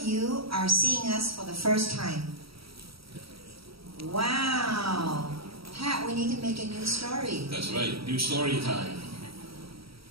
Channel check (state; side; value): late; left; 0.75 ms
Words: you are seeing us for the first time? Wow. Pat, we need to make a new story. That's right. New story time.